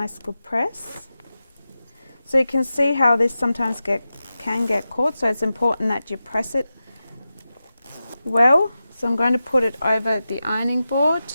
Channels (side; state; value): both; inverted; correlation -0.92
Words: good press. So you can see how this sometimes can get caught, so it's important that you press it well. So I'm going to put it over the ironing board.